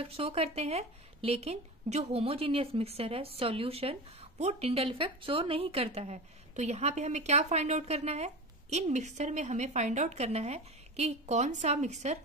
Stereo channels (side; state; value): both; normal; correlation 0.28